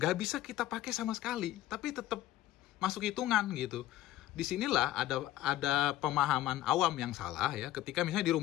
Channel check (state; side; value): quieter; right; 14.2 dB